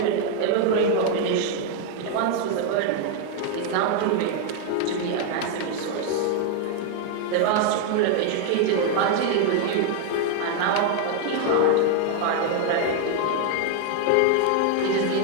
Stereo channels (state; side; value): different; both; correlation 0.01